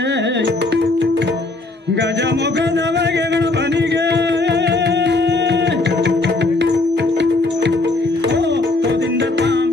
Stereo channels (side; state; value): right; quieter; 3.1 dB